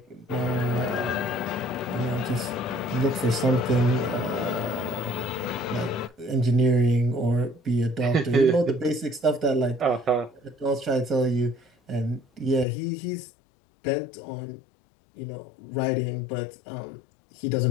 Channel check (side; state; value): right; drops out; at 12.7 s